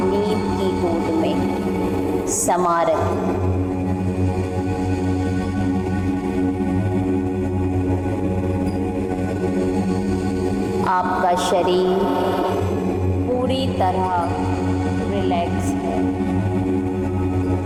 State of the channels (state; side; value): identical; both; correlation 1.00